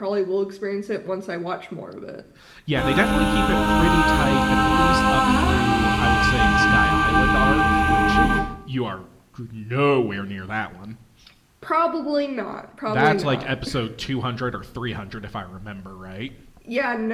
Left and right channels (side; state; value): both; identical; correlation 1.00